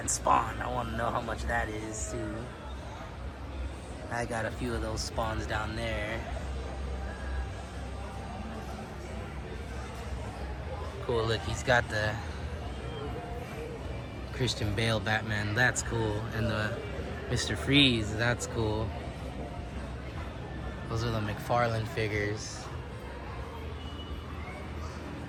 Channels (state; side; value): identical; both; correlation 1.00